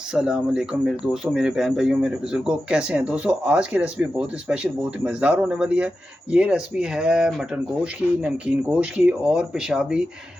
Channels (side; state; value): both; normal; correlation 0.91